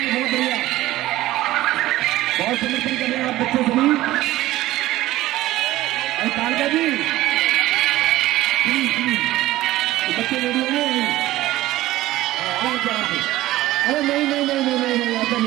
बढ़िया, बहुत समर्थन कर रहे हैं आप बच्चे सभी। और कालका जी बच्चे रेडियो में अरे नहीं ऐसा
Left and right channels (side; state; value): left; quieter; 16.1 dB